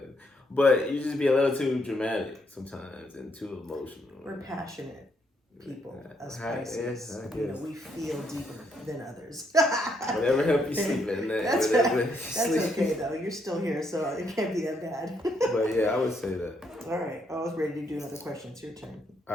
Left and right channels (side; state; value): both; normal; correlation 0.74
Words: thing, but you just be a little too dramatic sometimes and too emotional. We're passionate people, as Pisces. We feel deeper than others. Whatever help you sleep at night. That's okay though. You're still here, so it can't be that bad. But yeah, I would say that. All right, I was ready to do another question. It's your turn.